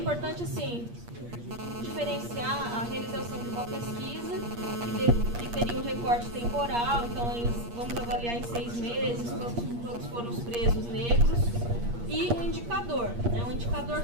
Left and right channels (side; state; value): left; late; 8.5 ms